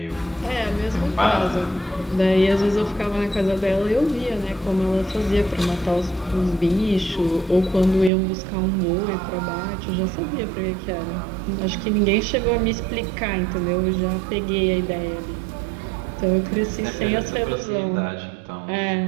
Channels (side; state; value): left; drops out; at 8.1 s